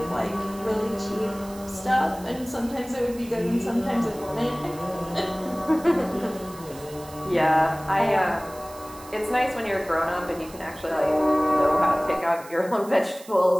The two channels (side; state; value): right; noise; hiss, 19 dB below the sound